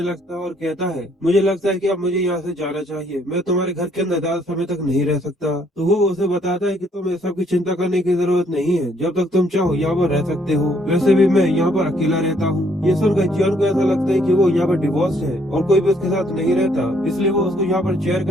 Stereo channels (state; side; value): normal; both; correlation 0.67